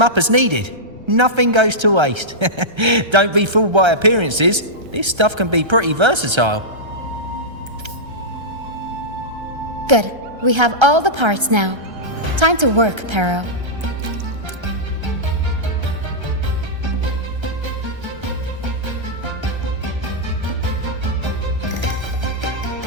up as needed. Nothing goes to waste. Don't be fooled by appearances. This stuff can be pretty versatile. Good. We have all the parts now. Time to work, Pero.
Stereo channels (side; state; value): left; late; 1.3 ms